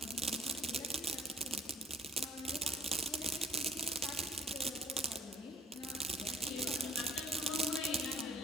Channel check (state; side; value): normal; both; correlation 0.56